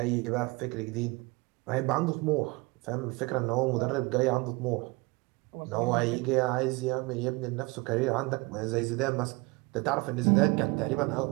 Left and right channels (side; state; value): left; quieter; 25.8 dB